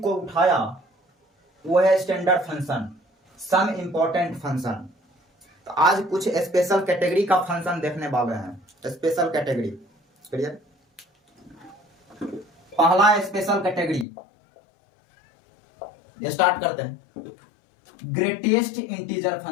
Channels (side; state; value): right; drops out; at 14.1 s